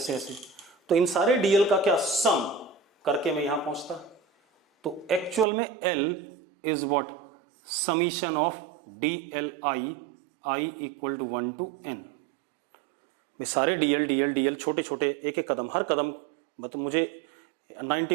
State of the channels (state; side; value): drops out; left; at 5.5 s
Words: ऐसे, तो इन सारे DL का क्या सम करके मैं यहां पहुंचता। तो एक्चुअल में L is what? Summation of DLI, I equal to 1 to N। सारे DL छोटे छोटे एक एक कदम, हर कदम मतलब मुझे